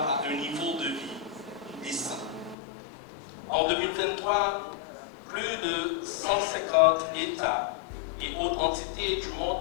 un niveau de vie décent. En 2023, plus de 150 États et autres entités du monde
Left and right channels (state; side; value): drops out; right; at 2.6 s